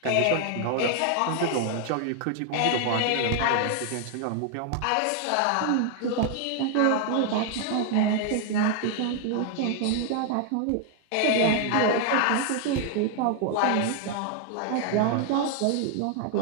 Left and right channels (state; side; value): different; both; correlation 0.00